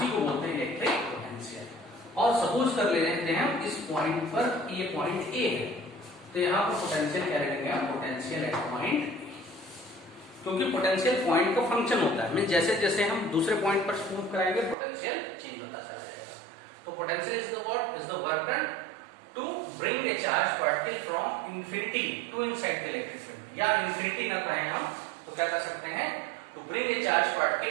को बोलते हैं इलेक्ट्रिक पोटेंशियल। और सपोज कर लेते हैं इस पॉइंट पर, ये पॉइंट ए है, तो यहाँ पर पोटेंशियल क्या रखेंगे हम, पोटेंशियल एट पॉइंट, क्योंकि पोटेंशियल पॉइंट का फंक्शन होता है, मींस जैसे जैसे हम दूसरे पॉइंट पर मूव कराएंगे पोटेंशियल चेंज होता चला जाएगा। तो potential is the what, is the work done to bring a charge particle from infinity to inside the electric field, या इंफिनिटी ना कहें हम तो क्या कर सकते हैं, to bring a charge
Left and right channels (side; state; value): left; drops out; at 14.8 s